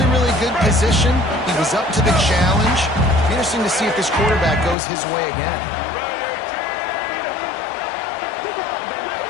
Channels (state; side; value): drops out; right; at 4.8 s